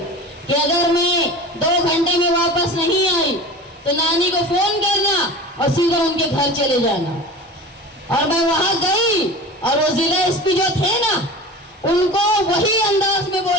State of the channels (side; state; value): both; normal; correlation 0.35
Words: कि अगर मैं 2 घंटे में वापस नहीं आई तो नानी को फोन करना और सीधा उनके घर चले जाना। और मैं वहां गई और वो जिला एसपी जो थे ना उनको वही अंदाज में